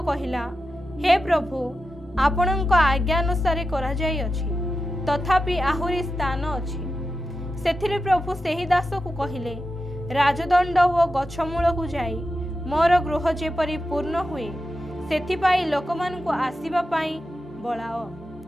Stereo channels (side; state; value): both; normal; correlation 0.90